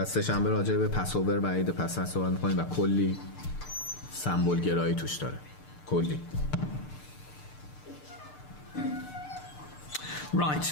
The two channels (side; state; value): right; late; 6.7 ms